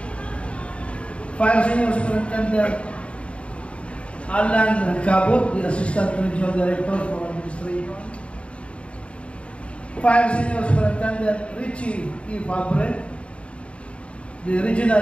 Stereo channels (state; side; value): late; right; 0.060 ms